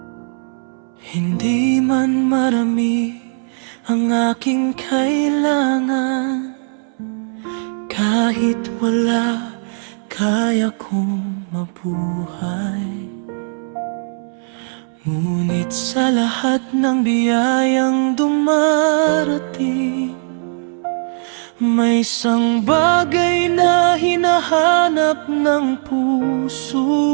Hindi man marami ang aking kailangan, kahit wala, kaya kong mabuhay. Ngunit sa lahat ng biyayang dumarating, may isang bagay na hinahanap ng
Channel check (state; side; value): silent; left; 66 dB below the other